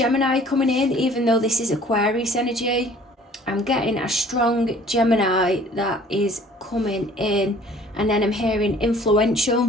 coming in, even though this is Aquarius energy. I'm getting a strong Gemini that is coming in, and then I'm hearing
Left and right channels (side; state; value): both; normal; correlation 0.53